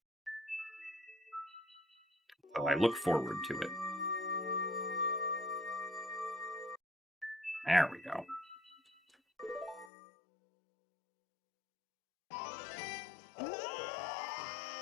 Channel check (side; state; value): right; drops out; at 9.9 s